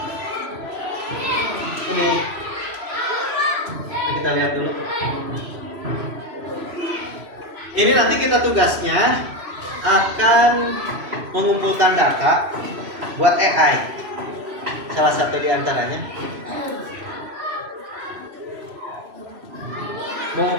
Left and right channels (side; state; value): left; late; 3.0 ms